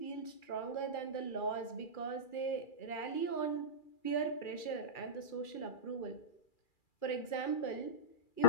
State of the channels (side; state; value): right; late; 2.4 ms